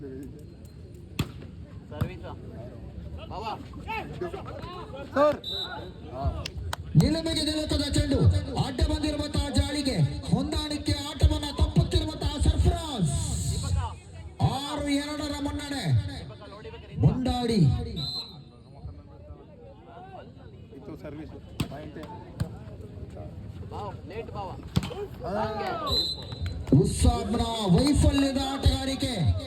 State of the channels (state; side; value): identical; both; correlation 1.00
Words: ನಿಲುಮೆಗೆ ನಿಲುಕದ ಚೆಂಡು ಅಡ್ಡ ಬಂದಿರುವಂತಹ ಜಾಳಿಗೆ ಹೊಂದಾಣಿಕೆ ಆಟವನ್ನ ತಪ್ಪುತ್ತಿರುವಂತಹ ಸರ್ಫರಾಜ್. 6-2 ಮುನ್ನಡೆ ಮುಂಡಾಡಿ. ಉಸ್ಸಾಬ್ನ ವೈಫಲ್ಯದ ಆಟಗಾರಿಕೆ